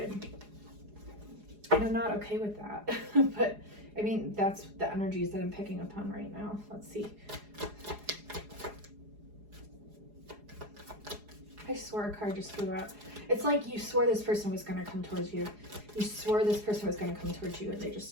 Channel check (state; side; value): late; left; 4.8 ms